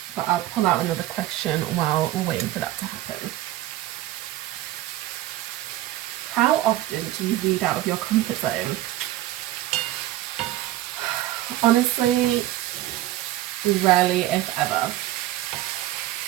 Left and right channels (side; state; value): left; quieter; 15.3 dB